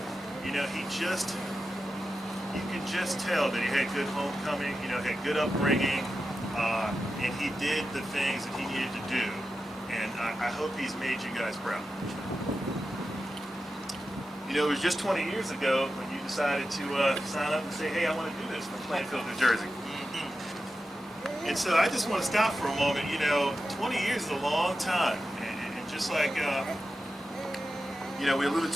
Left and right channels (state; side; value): normal; both; correlation 0.91